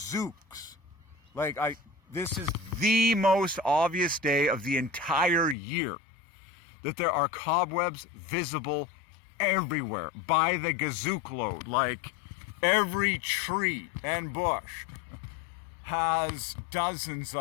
Like, this is the most obvious day of the entire year that there are cobwebs visible everywhere by the gazook load. Like, every tree and bush has dozens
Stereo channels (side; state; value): right; drops out; at 5.6 s